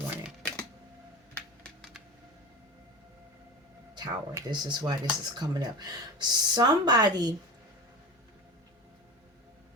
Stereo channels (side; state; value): both; normal; correlation 0.29